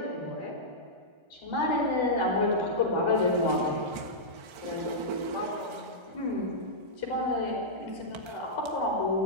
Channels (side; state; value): left; late; 1.3 ms